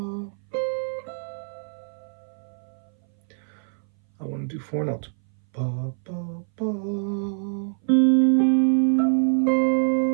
I want to do 4 notes. Ba, ba, ba.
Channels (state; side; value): silent; left; 60 dB below the other